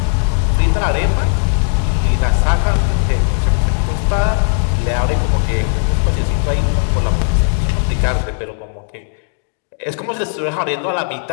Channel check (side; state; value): right; silent; digital silence